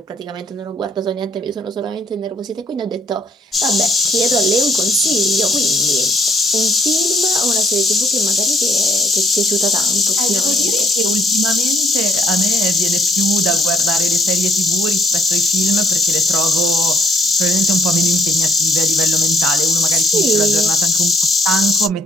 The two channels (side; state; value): both; normal; correlation 0.65